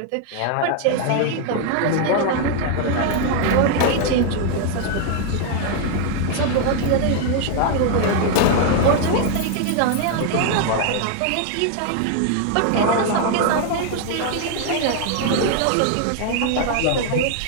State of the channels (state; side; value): different; both; correlation 0.00